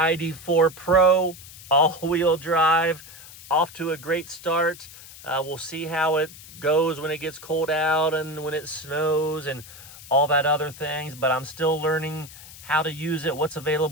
Pro all-wheel drive. Off to a great start. We'll see how it goes when it gets cold out and when it snows and all that other things, but I'm still learning how to use it, what's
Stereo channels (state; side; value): noise; left; hiss, 17 dB below the sound